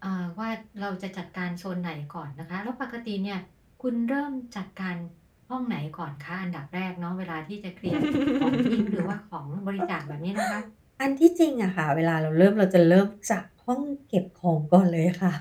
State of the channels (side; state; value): both; identical; correlation 1.00